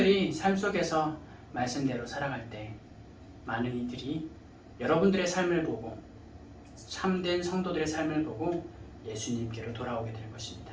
삶 속에서 말씀대로 살아갈 때 많은 이들이 여러분들의 삶을 보고, 참된 성도들의 삶을 보고 예수님께로 돌아오게 될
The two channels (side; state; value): both; identical; correlation 1.00